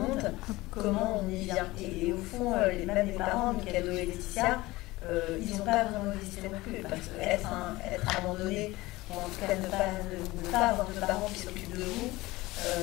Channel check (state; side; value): quieter; right; 19.7 dB